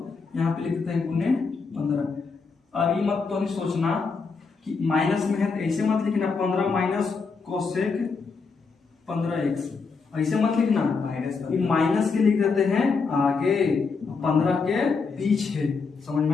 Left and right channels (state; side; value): quieter; right; 4.8 dB